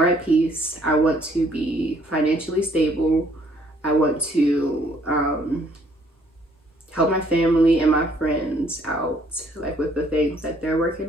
at peace. I want to be financially stable. I want to help my family and my friends out, like with the things that they're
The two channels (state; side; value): normal; both; correlation 0.64